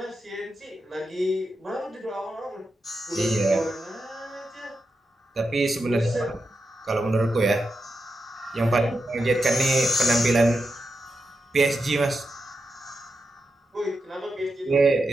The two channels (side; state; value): both; normal; correlation 0.87